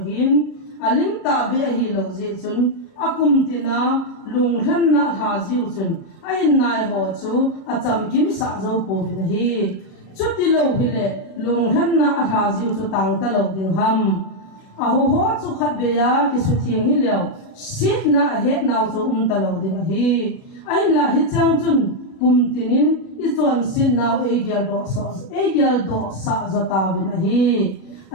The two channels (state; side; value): late; right; 37 ms